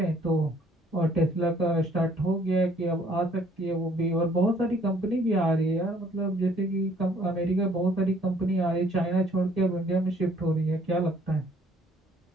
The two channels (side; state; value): both; normal; correlation 0.61